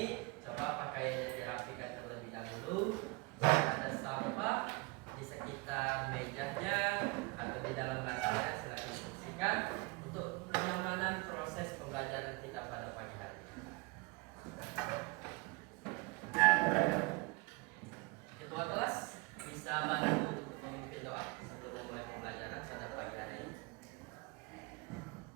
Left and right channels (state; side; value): quieter; left; 26.2 dB